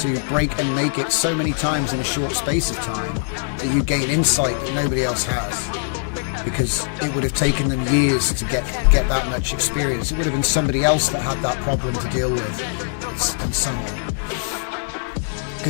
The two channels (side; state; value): right; silent; digital silence